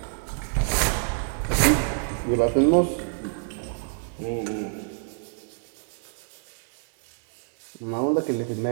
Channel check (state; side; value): silent; left; digital silence